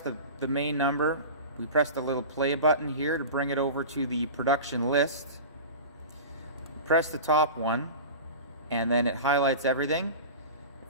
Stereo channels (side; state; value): both; inverted; correlation -0.31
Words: main number. We press the little play button here to bring it over to the production list. Press the top one, and then it highlights everything.